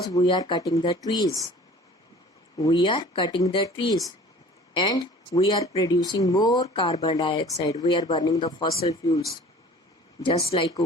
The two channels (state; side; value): normal; both; correlation 0.46